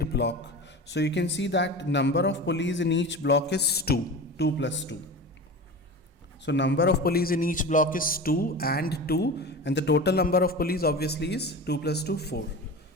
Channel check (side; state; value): both; normal; correlation 0.31